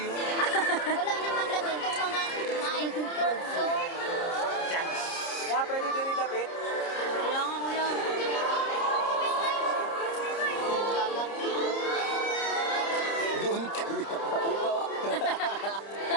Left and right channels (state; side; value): late; right; 30 ms